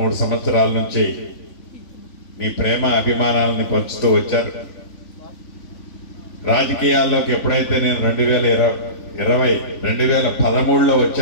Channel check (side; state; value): right; late; 3.5 ms